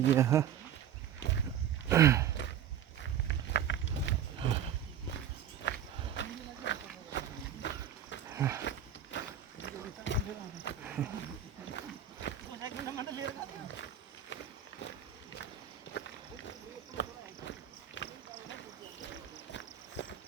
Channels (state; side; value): quieter; left; 9.3 dB